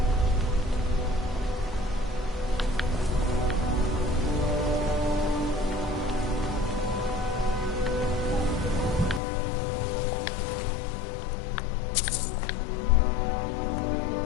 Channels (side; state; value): right; drops out; at 9.2 s